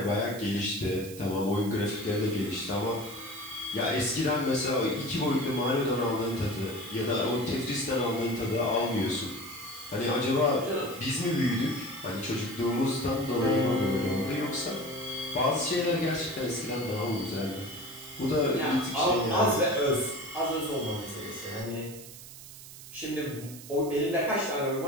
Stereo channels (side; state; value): right; noise; hiss, 15 dB below the sound